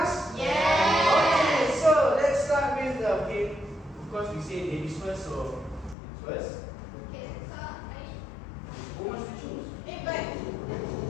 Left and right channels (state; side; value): drops out; right; at 6.0 s